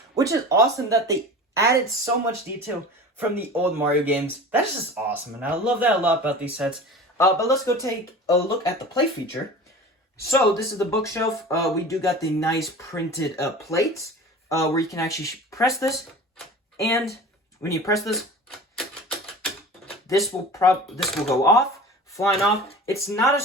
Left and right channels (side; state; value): both; normal; correlation 0.37